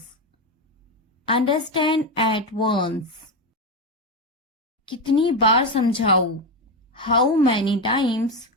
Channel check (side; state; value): both; normal; correlation 0.12